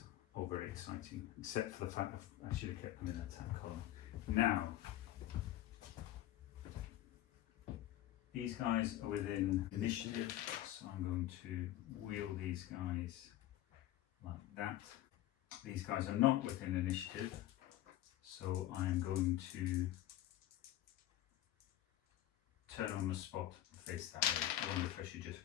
all very exciting, except for the fact that I should have kept them in that attack column. Now, these guys are within initiative, so I'm going to wheel these guys like that. These guys are not within initiative, so I'm going to turn on the spot and face that way. I wonder if I should just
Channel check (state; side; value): quieter; right; 13.8 dB